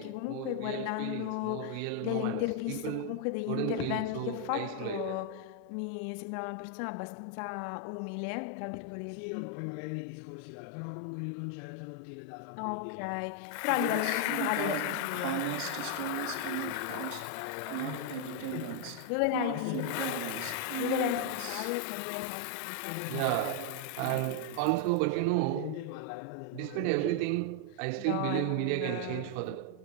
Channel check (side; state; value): both; different; correlation 0.00